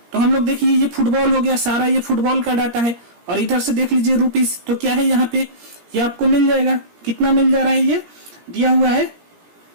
तो हम लोग देखिए ये फुटबॉल हो गया, सारा ये फुटबॉल का डाटा है, और इधर से देख लीजिए रुपीस, तो क्या है यहाँ पे, ये आपको मिल जाएगा, कितना मिल जा रहा है ये दिया हुआ है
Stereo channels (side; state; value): left; late; 17 ms